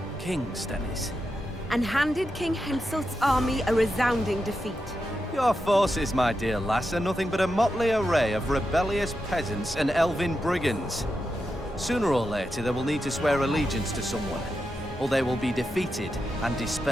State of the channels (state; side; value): normal; both; correlation 0.87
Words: King Stennis? And handed King Henselt's army a resounding defeat. Your forces, my dear lass, are nothing but a motley array of rebellious peasants and elven brigands. Sooner or later, they will need to swear allegiance to someone, or they will be defeated and